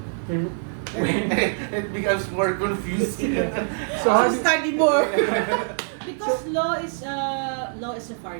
It becomes more confusing. So study more. Because law is a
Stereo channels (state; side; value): silent; left; digital silence